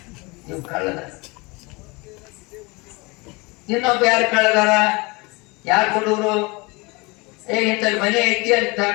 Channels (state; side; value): quieter; right; 26.2 dB